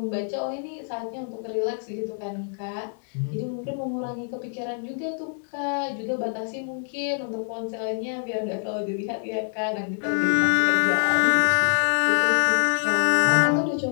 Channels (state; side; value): silent; right; digital silence